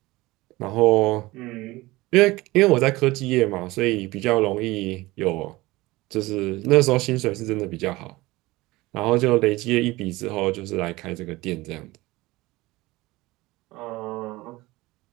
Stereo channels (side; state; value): left; quieter; 20.1 dB